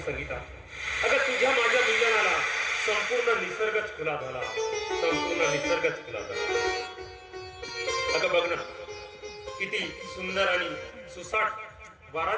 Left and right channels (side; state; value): both; identical; correlation 1.00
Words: अगं तुझ्या माझ्या मिलनाला संपूर्ण निसर्गच खुला झाला. अगं बघ ना, किती सुंदर आणि सुसाट वारा